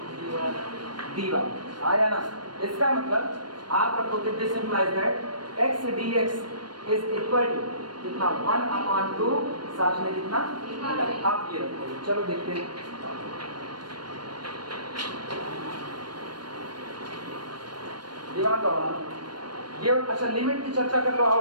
dy। आया ना? इसका मतलब आप रखोगे this implies that x dx is equal to कितना? 1/2, साथ में कितना? आप ये रखोगे। चलो देखते हैं। दिमाग लगाना। ये अच्छा लिमिट की चर्चा कर लो। आओ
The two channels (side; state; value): left; late; 0.71 ms